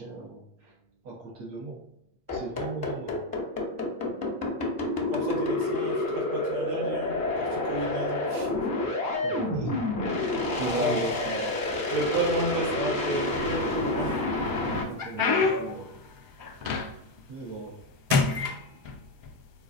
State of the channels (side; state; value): left; late; 7.9 ms